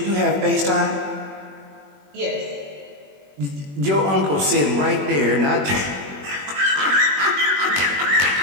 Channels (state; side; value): late; left; 21 ms